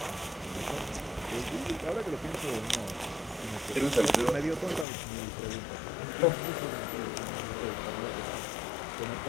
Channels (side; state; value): right; drops out; at 4.9 s